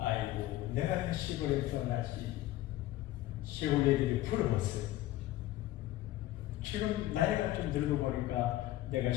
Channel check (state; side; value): quieter; right; 15.5 dB